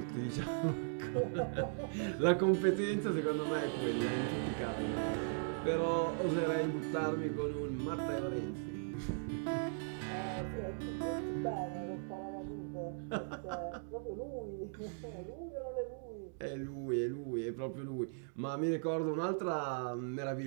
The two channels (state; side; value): silent; left; digital silence